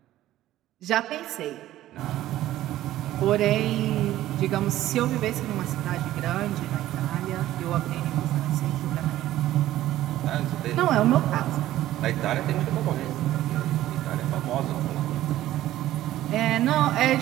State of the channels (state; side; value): quieter; left; 14.2 dB